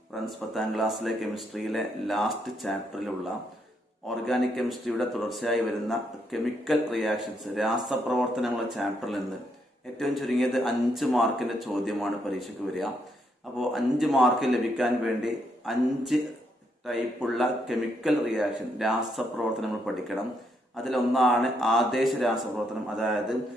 ഫ്രണ്ട്സ്, 10ാം ക്ലാസ്സിലെ കെമിസ്ട്രിയിലെ ലാസ്റ്റ് ചാപ്റ്ററിലുള്ള ഓർഗാനിക് കെമിസ്ട്രിയുടെ തുടർച്ചയായി വരുന്ന കെമിക്കൽ റിയാക്ഷൻസ് രാസപ്രവർത്തനങ്ങളുടെ ചാപ്റ്ററിൽ നിന്ന് ഏറ്റവും ചുരുങ്ങിയത് 5 മാർക്കിന്റെ ചോദ്യമാണ് പരീക്ഷയ്ക്ക് വരിക. അപ്പോൾ 5 മാർക്ക് ലഭിക്കാൻ വേണ്ടി 5 ടൈപ്പുള്ള കെമിക്കൽ റിയാക്ഷൻ രാസപ്രവർത്തനങ്ങൾ പഠിക്കണം. അതിലൊന്നാണ് ആദേശ രാസപ്രവർത്തനം, അതായത്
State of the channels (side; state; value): both; normal; correlation 0.76